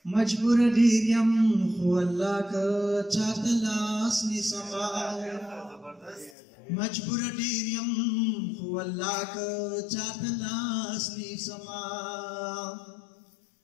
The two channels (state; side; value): drops out; right; at 6.4 s